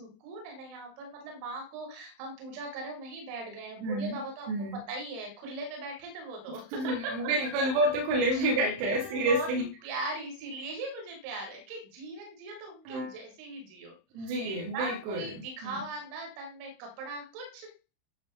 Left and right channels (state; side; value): late; left; 31 ms